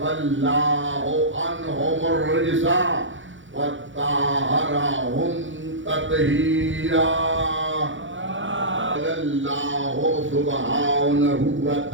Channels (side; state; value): left; late; 0.56 ms